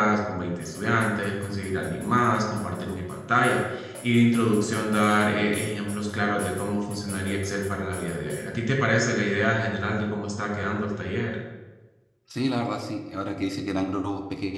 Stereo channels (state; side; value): identical; both; correlation 1.00